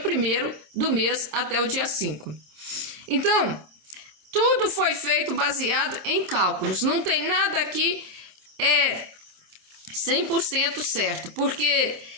do mês até o dia 5. Então, tudo foi feito baseado em cálculos. Não tem nada aqui 100% certo, porque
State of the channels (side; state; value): left; late; 26 ms